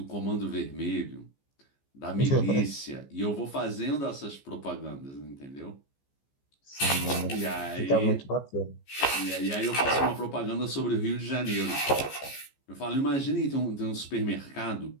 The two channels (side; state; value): right; late; 15 ms